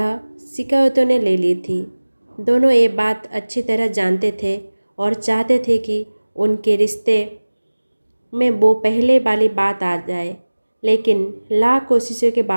शिकायतों ने ले ली थी। दोनों ये बात अच्छी तरह जानते थे और चाहते थे कि उनके रिश्ते में वो पहले वाली बात आ जाए, लेकिन लाख कोशिशों के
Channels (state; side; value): inverted; both; correlation -1.00